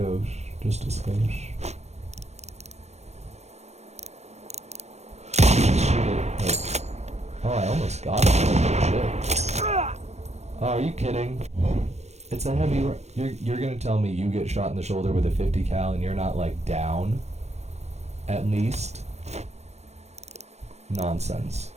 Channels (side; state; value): left; late; 0.32 ms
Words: Just a skosh. Shoot it. Wait. Oh, I almost got it. Shit. Oh, are you kidding? It's a heavy... You're gonna tell me you get shot in the shoulder with a 50 cal and you're not, like, down? At least? Nonsense.